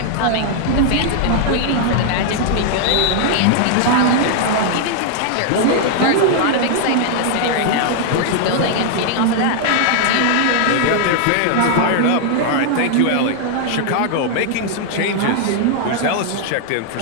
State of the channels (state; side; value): different; both; correlation -0.01